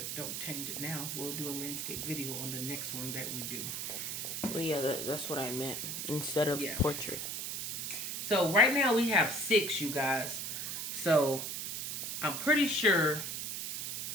don't change it now. We'll do a landscape video on the next one that we do. Well, yeah, that's what I meant. Instead of portrait. So right now we have 6, you guys. So I'm pretty sure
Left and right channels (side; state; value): right; noise; hiss, 4 dB below the sound